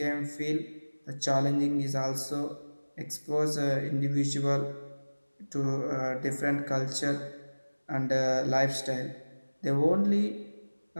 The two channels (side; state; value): both; inverted; correlation -1.00